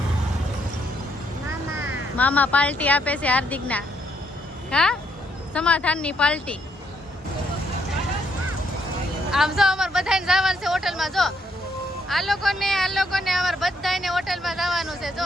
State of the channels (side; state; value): both; normal; correlation 0.73